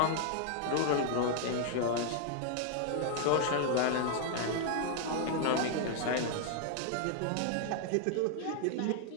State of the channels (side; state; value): both; different; correlation 0.00